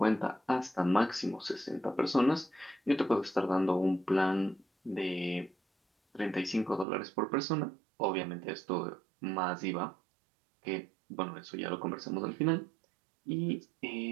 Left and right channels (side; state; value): left; drops out; at 6.9 s